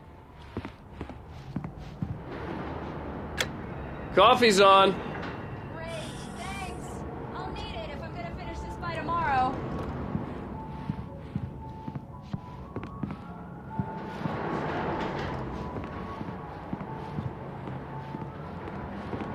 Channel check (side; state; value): both; identical; correlation 1.00